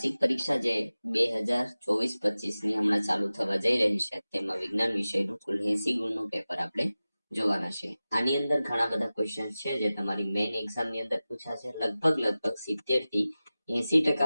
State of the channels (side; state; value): both; inverted; correlation -0.96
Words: પરીક્ષા જે 2024-25 ની હમણાં ચાલુ થવા જઈ રહી છે તેમાં વિજ્ઞાન વિષયનું કુલ 80 ગુણનું પેપર આપણે જોવાના છે. આની અંદર ઘણા બધા ક્વેશ્ચન છે જે તમારી મેઇન એક્ઝામ ની અંદર પૂછાશે. લગભગ 70 થી